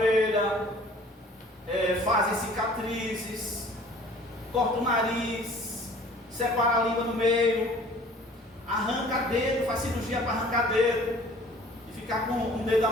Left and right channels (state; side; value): normal; both; correlation 0.50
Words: fazem cicatrizes, corta o nariz, separa a língua no meio, arranca dedo, faz cirurgia para arrancar dedo e ficar com um dedo